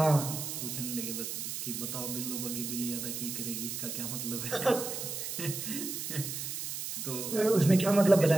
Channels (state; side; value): noise; right; hiss, 5 dB below the sound